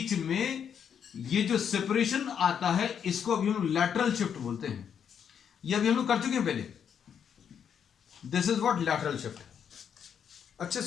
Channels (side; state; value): right; quieter; 7.9 dB